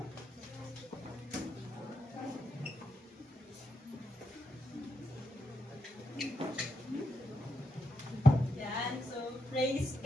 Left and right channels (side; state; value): both; normal; correlation 0.82